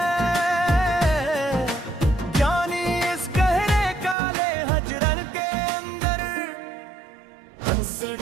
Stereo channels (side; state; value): left; drops out; at 4.2 s